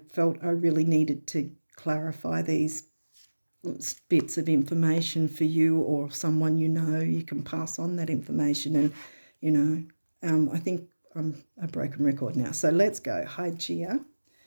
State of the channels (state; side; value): inverted; both; correlation -1.00